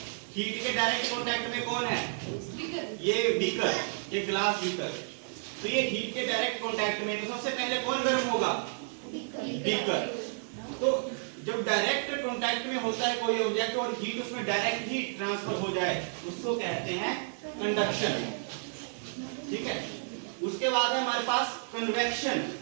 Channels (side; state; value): left; silent; digital silence